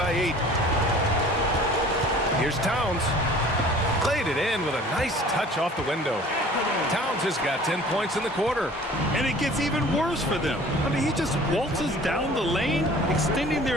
8. Here's Towns. Played it in with a nice touch off the window. Towns has got 10 points in the quarter. And it gets even worse for them. I mean, he just waltzes down the lane, extending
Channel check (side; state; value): both; normal; correlation 0.48